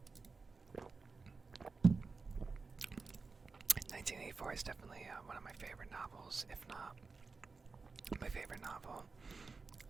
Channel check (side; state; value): left; quieter; 4.4 dB